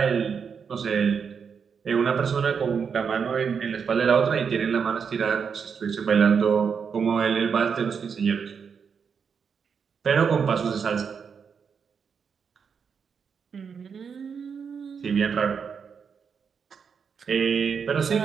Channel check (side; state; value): left; quieter; 6.4 dB